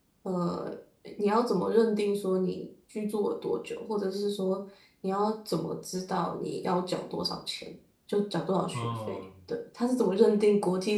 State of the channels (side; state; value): both; identical; correlation 1.00